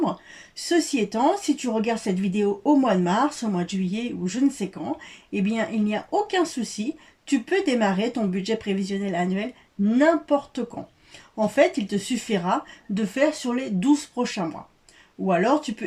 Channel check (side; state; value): both; identical; correlation 1.00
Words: Ceci étant, si tu regardes cette vidéo au mois de mars, au mois de juillet ou je ne sais quand, eh bien il n'y a aucun souci, tu peux démarrer ton budget prévisionnel annuel n'importe quand. En fait, il te suffira de faire sur les 12 prochains mois. Ou alors, tu